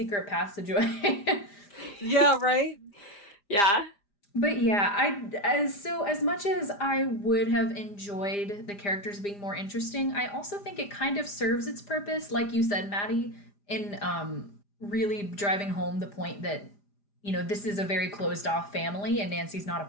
passageway." Yeah, right? Yeah. But yeah, as much as I would have enjoyed the characters being more interesting, I also think it kind of serves its purpose, like you said, Maddie, in really driving home the point that this is a very closed off family and Nancy's not a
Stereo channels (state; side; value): late; right; 4.9 ms